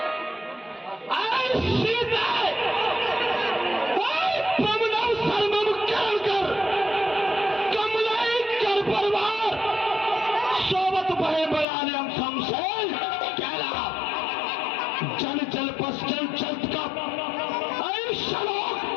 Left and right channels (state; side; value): drops out; right; at 11.7 s